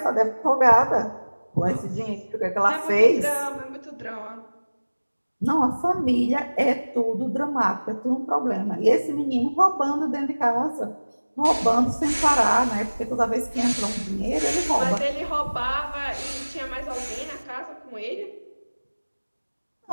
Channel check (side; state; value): both; inverted; correlation -1.00